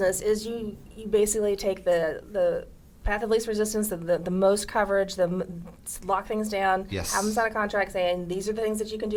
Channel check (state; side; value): identical; both; correlation 1.00